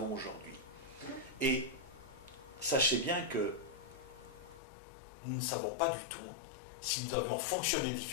aujourd'hui. Et sachez bien que nous ne savons pas du tout si nous avions fonctionné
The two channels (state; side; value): drops out; right; at 4.6 s